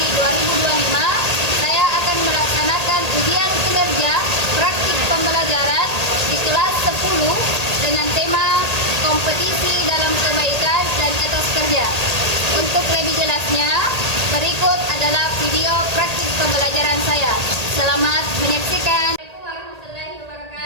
2025, saya akan melaksanakan ujian kinerja praktik pembelajaran di kelas 10 dengan tema kompetisi dalam kebaikan dan etos kerja. Untuk lebih jelasnya, berikut adalah video praktik pembelajaran saya. Selamat menyaksikan. Assalamualaikum warahmatullahi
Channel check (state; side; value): late; left; 1.8 ms